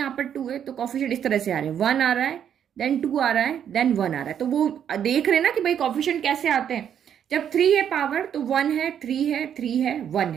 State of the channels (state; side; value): quieter; left; 9.0 dB